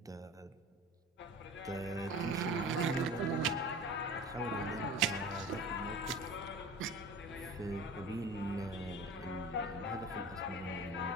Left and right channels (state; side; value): normal; both; correlation 0.37